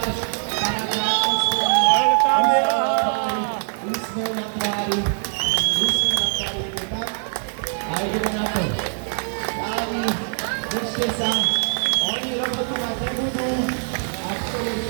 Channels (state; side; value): silent; left; digital silence